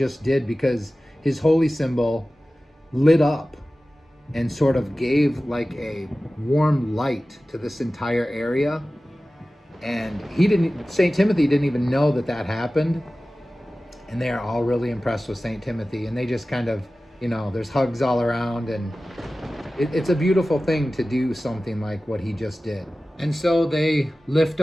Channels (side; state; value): both; normal; correlation 0.96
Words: did, because his holy symbol lit up and sort of gave like a warm light to this entire area. And St. Timothy didn't even know that that happened. And they are all really impressed with St. Timothy. And they just kind of, there's hugs all around. And it's a beautiful thing to do something like what he just did. And so they lift